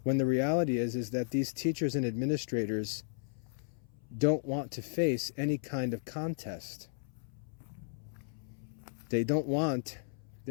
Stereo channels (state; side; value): silent; right; 55 dB below the other